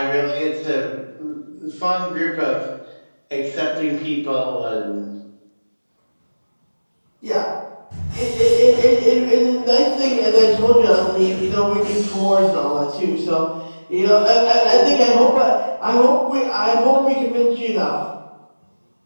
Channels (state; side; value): inverted; both; correlation -1.00